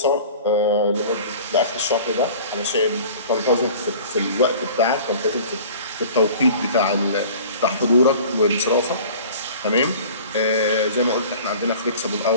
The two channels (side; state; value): both; inverted; correlation -0.43